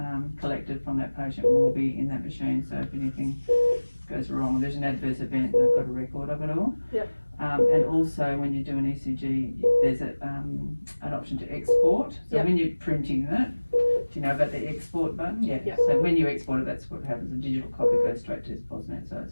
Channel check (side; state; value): both; inverted; correlation -1.00